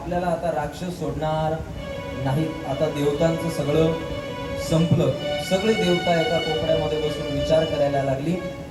आता राक्षस सोडणार नाही. आता देवतांचं सगळं संपलं. सगळी देवता एका कोपऱ्यामध्ये बसून विचार करायला लागली.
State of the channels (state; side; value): identical; both; correlation 1.00